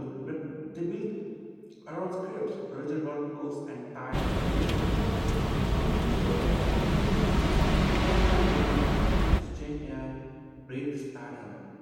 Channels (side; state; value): both; identical; correlation 1.00